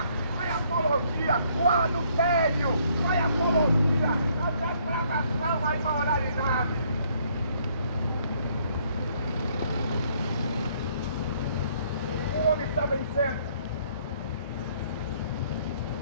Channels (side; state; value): both; inverted; correlation -0.66